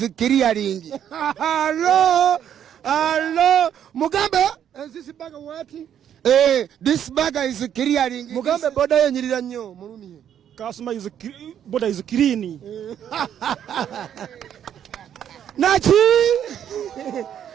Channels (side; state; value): left; quieter; 9.6 dB